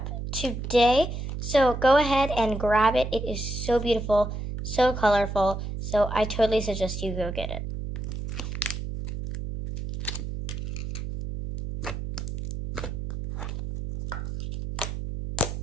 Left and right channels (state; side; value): noise; right; hum, 6 dB below the sound